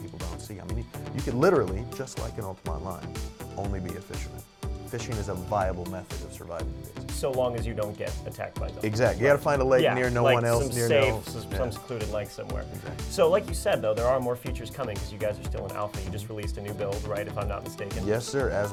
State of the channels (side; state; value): both; identical; correlation 1.00